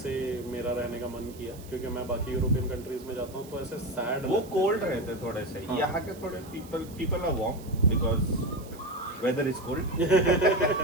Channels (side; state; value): right; noise; hiss, 21 dB below the sound